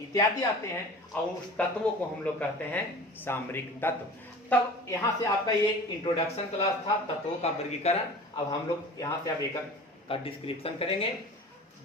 इत्यादि आते हैं, और उस तत्वों को हम लोग कहते हैं सामरिक तत्व। तब यहाँ से आपका ये इंट्रोडक्शन क्लास था, तत्वों का वर्गीकरण। अब हम लोग यहाँ से अब एक का डिस्क्रिप्शन करेंगे।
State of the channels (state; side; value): normal; both; correlation 0.39